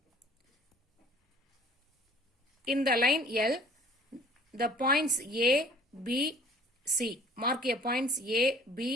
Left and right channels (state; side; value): normal; both; correlation 0.52